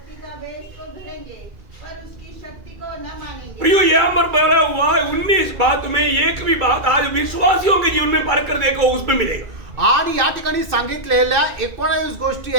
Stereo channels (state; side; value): late; left; 2.3 ms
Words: का वेश तो धरेंगे पर उसकी शक्ति को न मानेंगे। प्रियो, यहाँ पर बोला हुआ है 19 बात में एक भी बात आज विश्वासियों के जीवन में पार कर देखो, उसमें मिलेगा। आणि या ठिकाणी सांगितलेल्या 19 गोष्टी